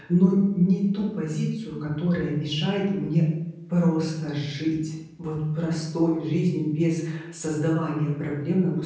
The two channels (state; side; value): identical; both; correlation 1.00